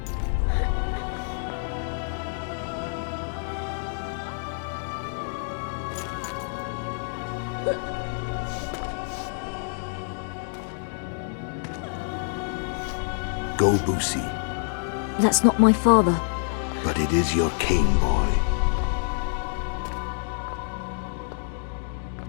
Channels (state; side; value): silent; right; 60 dB below the other